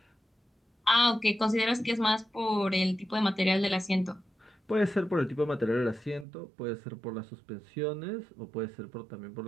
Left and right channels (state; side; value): drops out; left; at 6.2 s